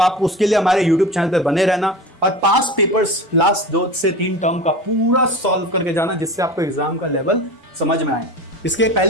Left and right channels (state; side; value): normal; both; correlation 0.32